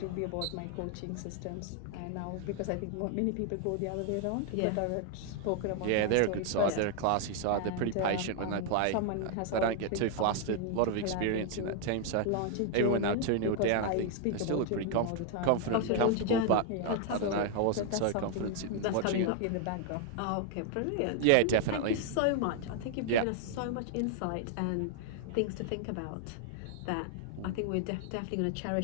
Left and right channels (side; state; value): both; different; correlation 0.00